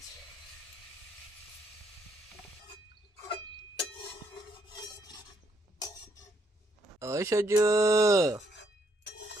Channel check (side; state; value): both; normal; correlation 0.73